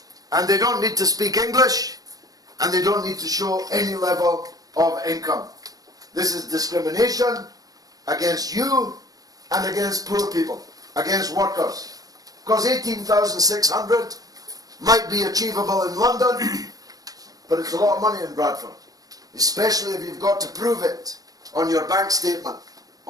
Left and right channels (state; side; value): late; left; 0.18 ms